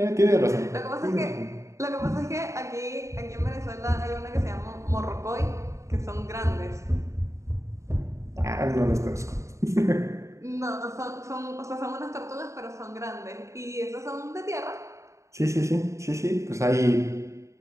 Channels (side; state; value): left; late; 0.14 ms